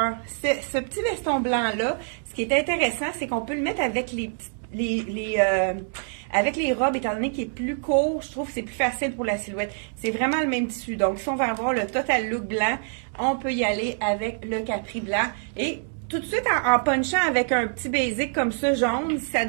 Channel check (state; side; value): silent; left; 61 dB below the other